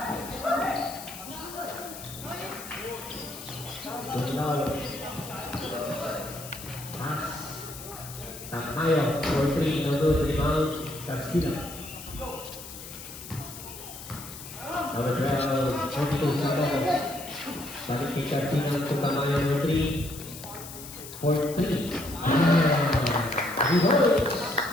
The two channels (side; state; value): left; noise; hiss, 13 dB below the sound